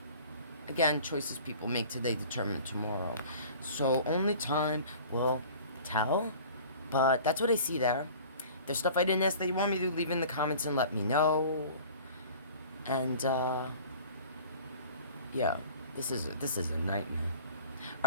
Again, choices people make today determine tomorrow. So only time will tell. But that's what I see there. There's stuff I didn't ask that you want me to, leave in the comments and let me know. And yeah, this is a nightmare.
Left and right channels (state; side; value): inverted; both; correlation -0.45